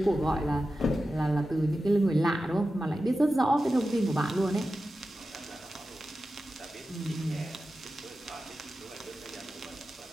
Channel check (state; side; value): normal; both; correlation 0.93